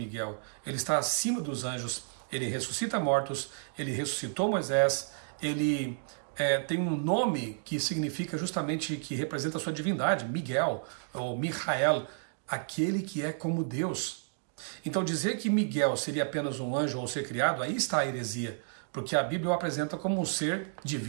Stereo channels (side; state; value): left; silent; digital silence